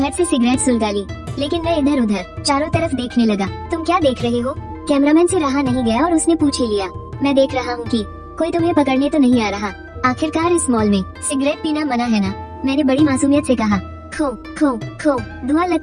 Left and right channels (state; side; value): identical; both; correlation 1.00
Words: से सिगरेट सुलगा ली, लेकिन मैं इधर उधर चारों तरफ देखने लगा। तुम क्या देख रहे हो? कैमरामैन से रहा नहीं गया और उसने पूछ ही लिया। मैं देख रहा हूँ कि कोई तुम्हें पकड़ने तो नहीं आ रहा। आखिरकार इस मॉल में सिगरेट पीना मना है ना? मैंने बड़ी मासूमियत से कहा। खो खो खो। धुआं